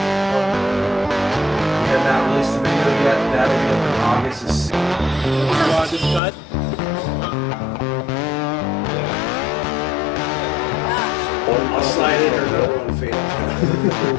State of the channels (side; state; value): right; drops out; at 6.2 s